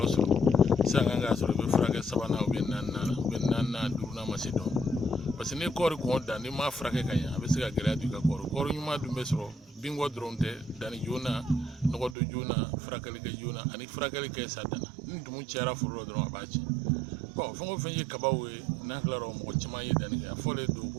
sɔrɔ sisan kan k'a sɔrɔ i bɛ furakɛ sabanan ou bien naaninan ou bien naaninan duurunan ma se dɔn parce que ni kɔɔri kɔn dan n'i m'a furakɛ ka ɲɛ a bɛ se ka gɛlɛya don i ka kɔɔri ɲuman dun bɛ sɔrɔ binko dɔrɔn tɛ danni joona nɔgɔ don joona furakɛli kɛ joona ani furakɛli kɛ sa danna ni dumu cayara foro la dɔrɔn a b'a tiɲɛ bon fɛn o fɛn ye kabaw ye n'an tilara mɔgɔ caman ye danni kɛ a fɔlen don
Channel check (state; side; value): drops out; left; at 12.2 s